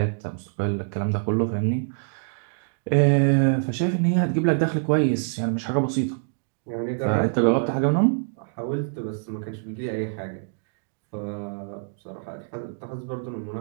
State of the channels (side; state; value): left; silent; digital silence